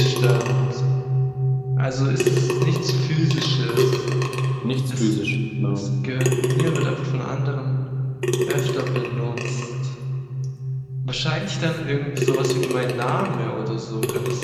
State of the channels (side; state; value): both; identical; correlation 1.00